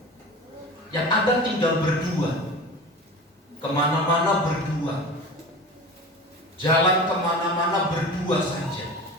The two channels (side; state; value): both; normal; correlation 0.34